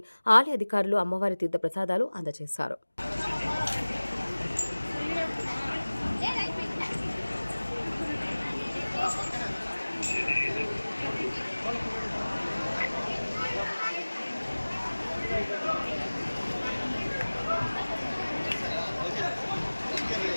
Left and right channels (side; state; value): both; inverted; correlation -1.00